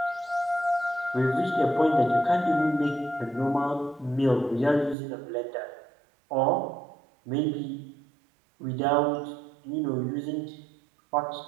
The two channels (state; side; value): drops out; left; at 5.0 s